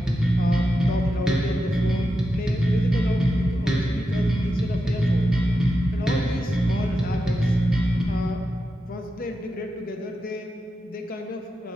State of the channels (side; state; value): both; normal; correlation 0.88